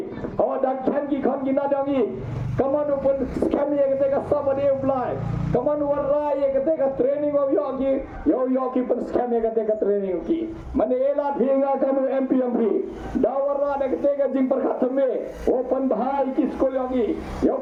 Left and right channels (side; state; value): both; identical; correlation 1.00